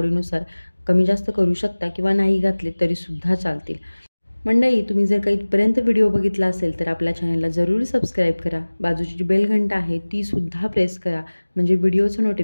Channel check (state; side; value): inverted; both; correlation -1.00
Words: कमी जास्त करू शकता किंवा नाही घातले तरीसुद्धा चालतील. मंडळी, तुम्ही जर काही इथपर्यंत व्हिडिओ बघितला असेल तर आपल्या चॅनलला जरूर सबस्क्राईब करा. बाजूची जी बेल घंटा आहे तीसुद्धा प्रेस करा, म्हणजे व्हिडिओचं